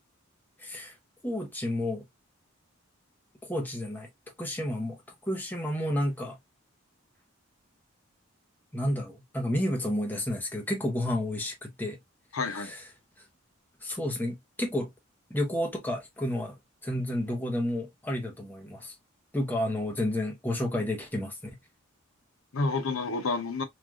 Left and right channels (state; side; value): normal; both; correlation 0.73